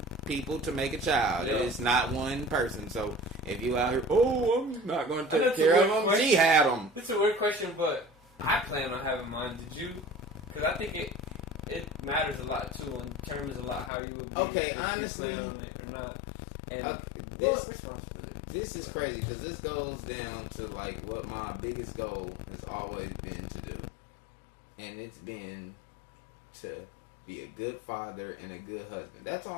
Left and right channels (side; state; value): right; drops out; at 13.9 s